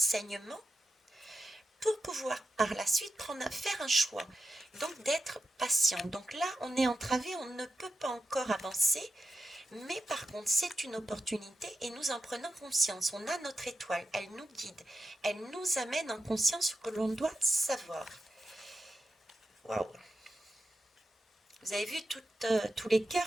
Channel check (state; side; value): normal; both; correlation 0.90